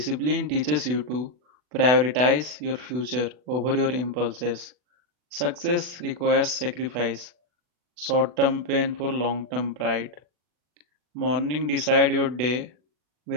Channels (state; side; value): late; left; 40 ms